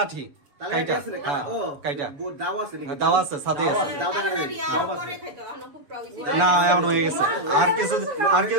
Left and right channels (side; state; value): left; late; 6.9 ms